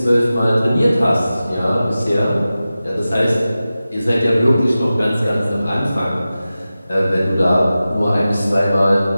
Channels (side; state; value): both; inverted; correlation -0.95